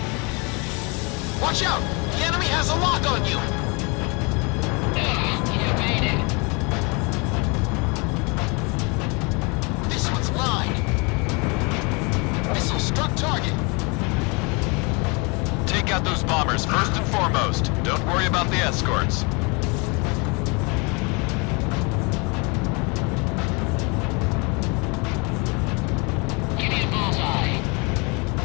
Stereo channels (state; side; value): quieter; right; 30.4 dB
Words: Watch out! The enemy has a lock on you! You evaded. This one's mine! Missile struck target! Take out those bombers first and foremost. Don't worry about the escorts. Give me a bullseye.